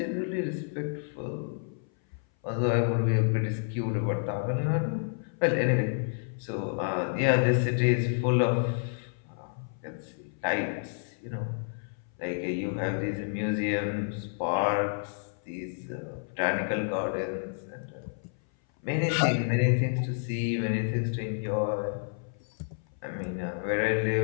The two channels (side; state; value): right; silent; 57 dB below the other